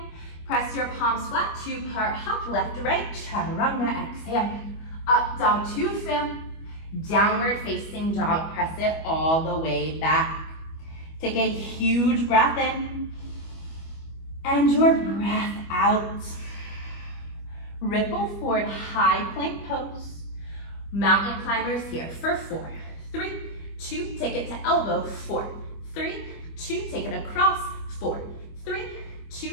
press your palms flat, 2-part hop, left to right, chaturanga, exhale, up dog to fill, downward facing dog, press it all the way back. Take a huge breath in, and your breath out. Ripple forward, high plank pose. Mountain climbers here for 4, 3, 2, take it to elbow, 4, 3, 2, take it across, 4, 3,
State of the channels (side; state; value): right; late; 25 ms